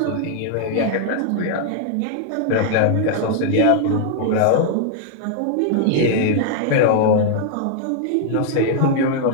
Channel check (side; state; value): both; different; correlation 0.00